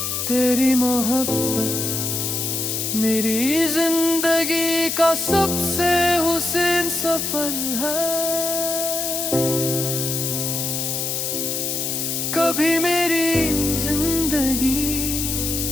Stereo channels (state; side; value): noise; left; hiss, 1 dB below the sound